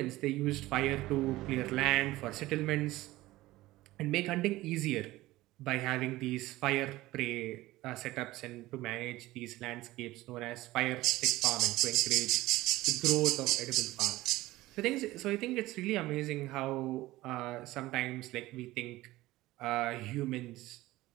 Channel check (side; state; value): left; quieter; 17.7 dB